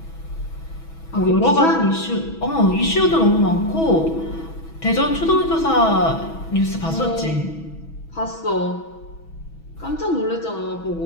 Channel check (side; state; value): right; late; 6.2 ms